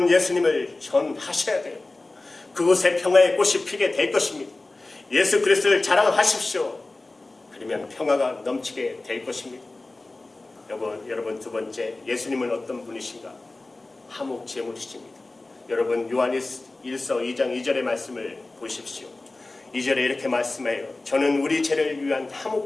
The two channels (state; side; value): quieter; right; 3.1 dB